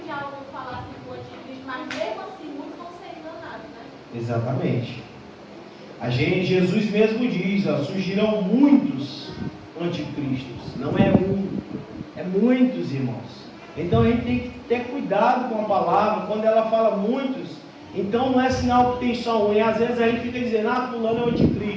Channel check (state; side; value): identical; both; correlation 1.00